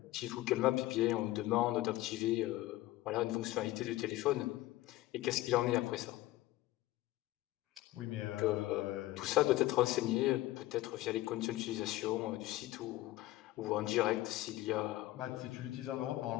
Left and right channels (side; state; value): right; quieter; 17.0 dB